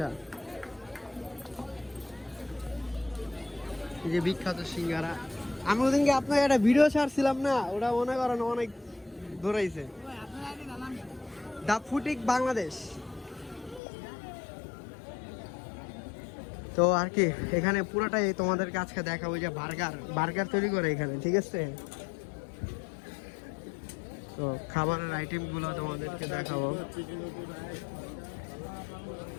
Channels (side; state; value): right; drops out; at 13.8 s